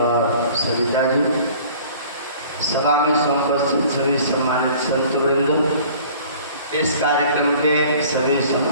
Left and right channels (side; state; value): both; inverted; correlation -0.49